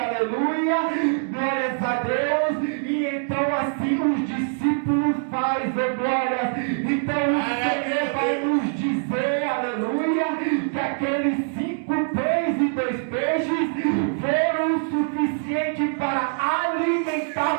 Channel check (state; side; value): silent; left; digital silence